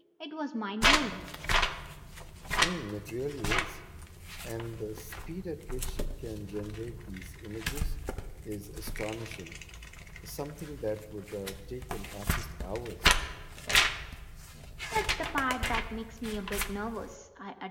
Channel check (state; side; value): identical; both; correlation 1.00